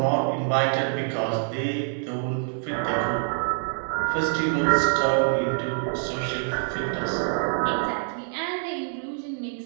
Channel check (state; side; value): silent; left; digital silence